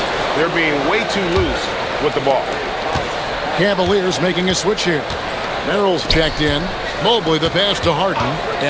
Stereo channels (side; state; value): both; identical; correlation 1.00